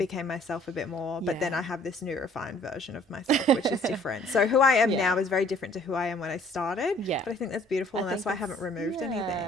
myself a bit more. But then I have this new refined version of myself, which is different. So who I am now is very different to who I am when I started. Yeah. But I think that's beautiful, and that's why I haven't removed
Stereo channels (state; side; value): normal; both; correlation 0.57